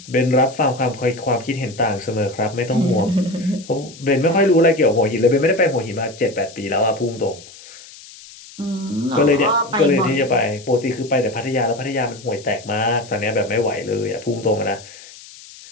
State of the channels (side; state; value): left; noise; hiss, 19 dB below the sound